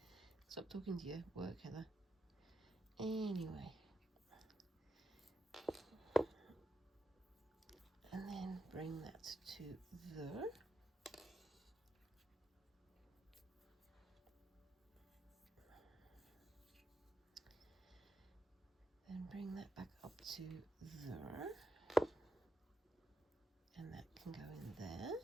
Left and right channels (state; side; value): normal; both; correlation 0.84